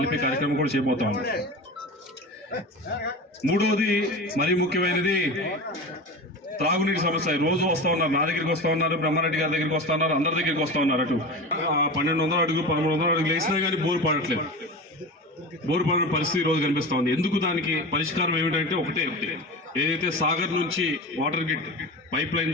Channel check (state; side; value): normal; both; correlation 0.28